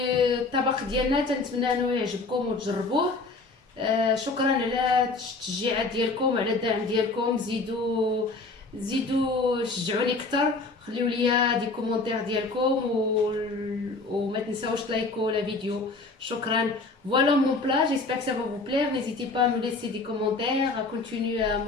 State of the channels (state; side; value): quieter; right; 3.6 dB